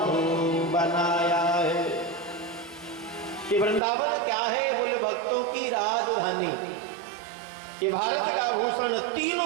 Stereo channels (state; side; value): drops out; left; at 3.8 s